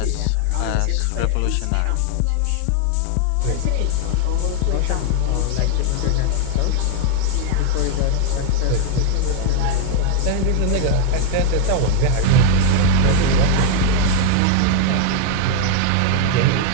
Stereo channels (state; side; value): different; both; correlation 0.00